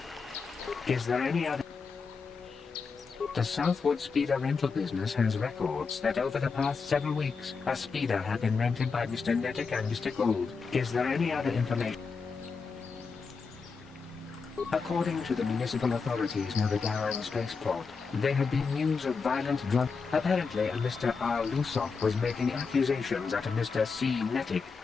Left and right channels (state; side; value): quieter; right; 5.0 dB